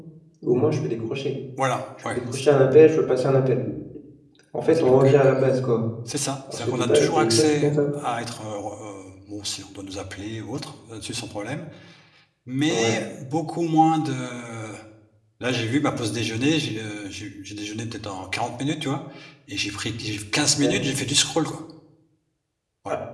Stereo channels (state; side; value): identical; both; correlation 1.00